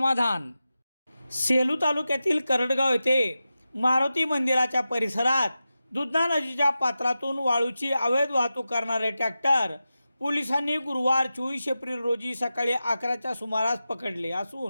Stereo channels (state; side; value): inverted; both; correlation -0.92